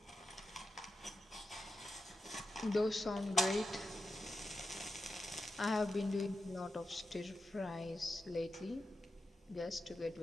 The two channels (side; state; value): both; normal; correlation 0.89